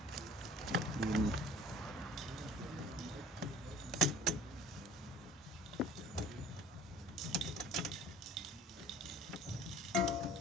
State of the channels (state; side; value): normal; both; correlation 0.46